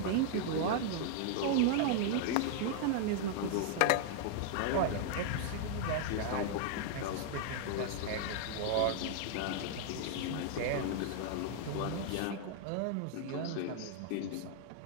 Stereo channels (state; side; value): different; both; correlation 0.00